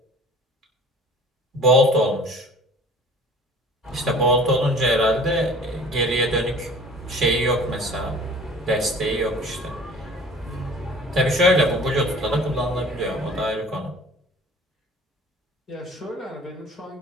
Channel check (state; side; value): normal; both; correlation 0.47